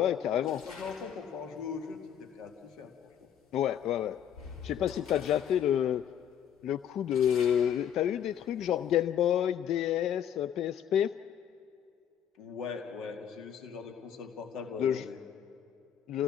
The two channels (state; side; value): quieter; right; 9.4 dB